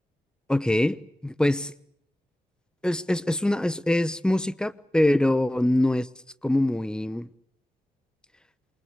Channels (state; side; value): normal; both; correlation 0.96